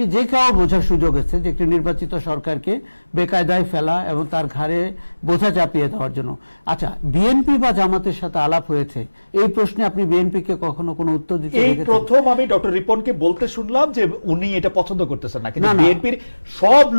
যে কেউ বোঝার সুযোগ আছে যে একটি নির্বাচিত সরকারকে বেকায়দায় ফেলা এবং তার ঘাড়ে বোঝা চাপিয়ে দেওয়ার জন্য। আচ্ছা, বিএনপি বা জামাতের সাথে আলাপ হয়েছে, এই প্রশ্নে আপনি বিএনপিকে কখনো কোনো উত্তর দিতে এই প্রথম আমি ডক্টর রিপনকে বলতে শুনলাম যে উনি এটা পছন্দ করতেছেন না, কিন্তু বিএনপির সব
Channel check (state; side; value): inverted; both; correlation -1.00